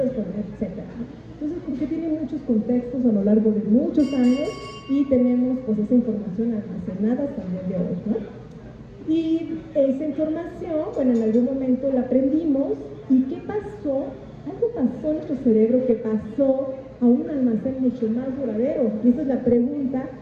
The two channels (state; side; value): identical; both; correlation 1.00